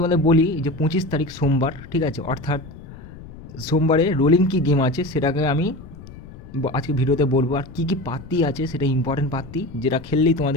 বলি যে 25 তারিখ সোমবার, ঠিক আছে, অর্থাৎ সোমবারে রোলিং কি গেম আছে সেটাকে আমি আজকে ভিডিওতে বলবো। আর কী কী পাত্তি আছে সেটা ইম্পর্টেন্ট পাত্তি, যেটা খেললেই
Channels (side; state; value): left; noise; rumble, 16 dB below the sound